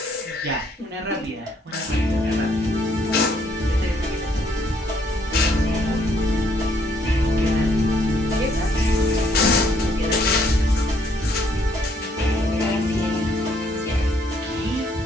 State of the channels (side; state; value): both; normal; correlation 0.68